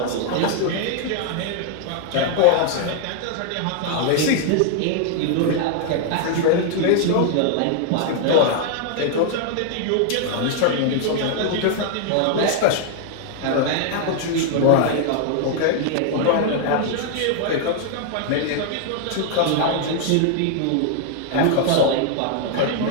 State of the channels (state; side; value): different; both; correlation 0.00